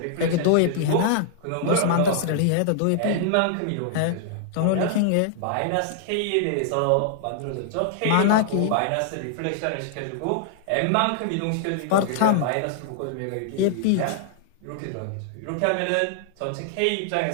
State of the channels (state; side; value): different; both; correlation -0.01